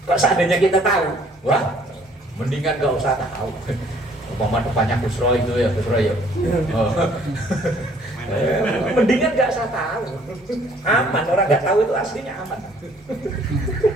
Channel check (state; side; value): normal; both; correlation 0.60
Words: Kok seandainya kita tahu, wah, mendingan gak usah tahu. Umpama depannya Busro itu ya, Busro ya. Oh. Mendingan gak usah tahu. Aman, orang gak tahu itu aslinya aman.